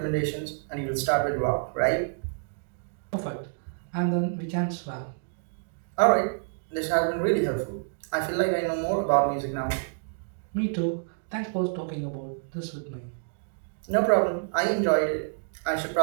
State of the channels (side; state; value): left; silent; digital silence